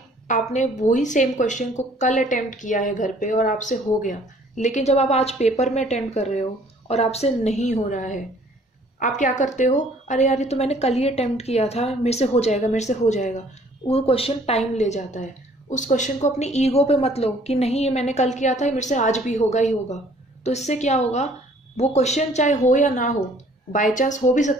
आपने वही सेम क्वेश्चन को कल अटेम्प्ट किया है घर पे और आपसे हो गया, लेकिन जब आप आज पेपर में अटेम्प्ट कर रहे हो और आपसे नहीं हो रहा है, आप क्या करते हो, अरे यार ये तो मैंने कल ही अटेम्प्ट किया था, मेरे से हो जाएगा मेरे से हो जाएगा। वो क्वेश्चन टाइम ले जाता है। उस क्वेश्चन को अपनी ईगो पे मत लो कि नहीं ये मैंने कल किया था, ये मेरे से आज भी होगा ही होगा। तो इससे क्या होगा, वो क्वेश्चन चाहे हो या ना हो, बाय चांस हो भी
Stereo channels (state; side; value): normal; both; correlation 0.57